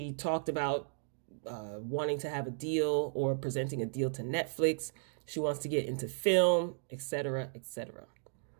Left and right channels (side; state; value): left; silent; digital silence